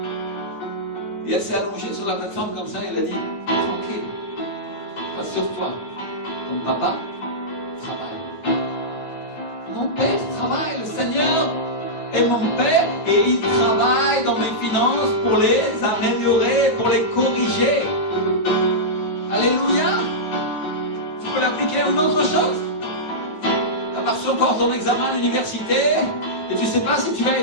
Et elle s'est allongée sur la plateforme comme ça et elle a dit, tranquille. Rassure-toi, ton papa travaille. Mon père travaille, le Seigneur est mon père et il travaille dans mes finances pour les améliorer, pour les corriger. Alléluia. Tu peux l'appliquer à une autre chose. Tu as pas reçu encore ton examen à l'université et tu ne sais pas si tu vas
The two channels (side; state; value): right; late; 9.4 ms